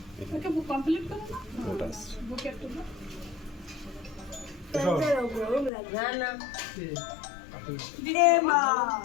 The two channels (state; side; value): drops out; right; at 5.7 s